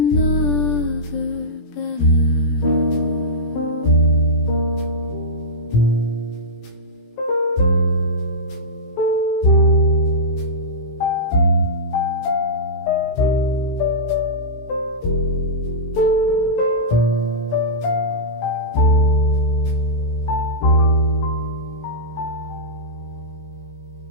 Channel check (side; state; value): right; late; 17 ms